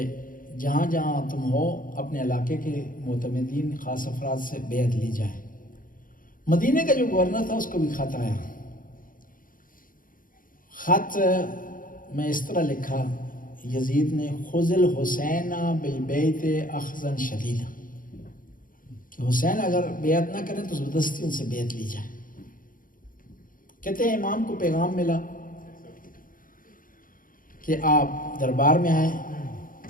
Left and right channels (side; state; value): right; late; 0.40 ms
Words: جہاں جہاں تم ہو اپنے علاقے کے معتمدین خاص افراد سے بیعت لی جائے۔ مدینہ کا جو گورنر تھا اس کو بھی خط آیا۔ خط میں اس طرح لکھا یزید نے، خذ الحسین بالبیت اخذا شدیدا، کہ حسین اگر بیعت نہ کریں تو زبردستی ان سے بیعت لی جائے۔ کہتے ہیں امام کو پیغام ملا کہ آپ دربار میں آئیں۔